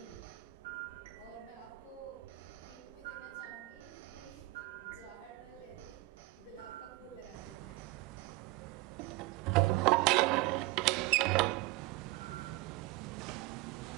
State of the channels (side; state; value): left; quieter; 20.3 dB